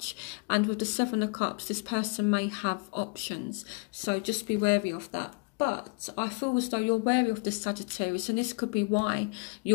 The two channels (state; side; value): quieter; right; 32.3 dB